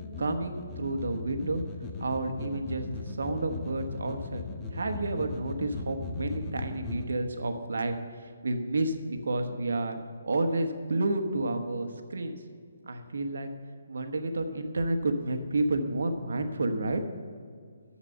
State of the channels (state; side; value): inverted; both; correlation -0.82